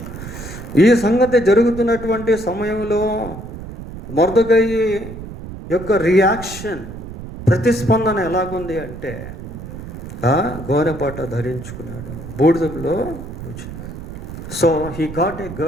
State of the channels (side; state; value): right; noise; rumble, 11 dB below the sound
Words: ఈ సంగతి జరుగుతున్నటువంటి సమయంలో మొర్దెకై యొక్క రియాక్షన్, ప్రతిస్పందన ఎలాగుంది అంటే, గోనెపట్ట ధరించుకున్నాడు, బూడిదలో కూర్చున్నాడు. So he got